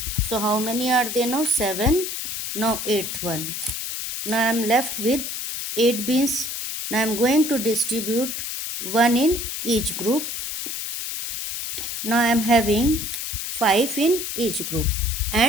So how many are there now? 7. Now 8th one. Now I am left with 8 beans. Now I am going to distribute 1 in each group. Now I am having 5 in each group.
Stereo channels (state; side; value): noise; left; hiss, 4 dB below the sound